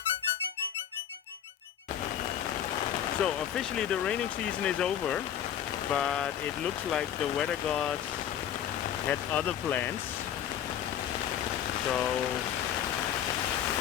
So officially the raining season is over, but it looks like the weather gods had other plans. So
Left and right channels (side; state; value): right; quieter; 9.9 dB